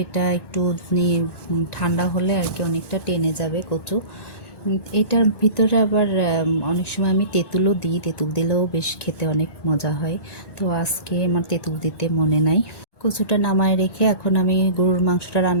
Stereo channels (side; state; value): right; late; 1.1 ms